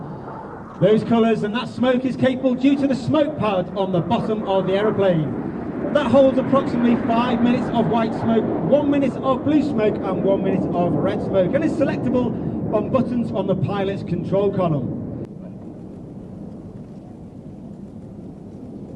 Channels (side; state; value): both; identical; correlation 1.00